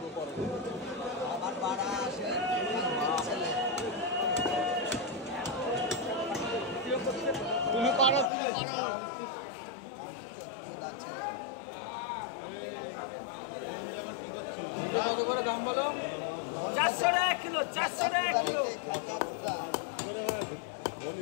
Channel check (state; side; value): drops out; right; at 8.3 s